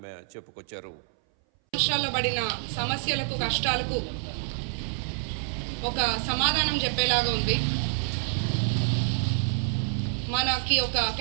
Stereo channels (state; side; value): silent; left; 59 dB below the other